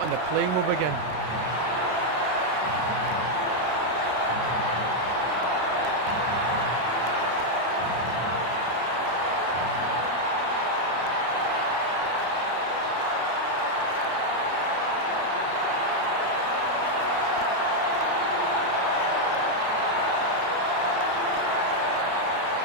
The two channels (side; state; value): left; late; 33 ms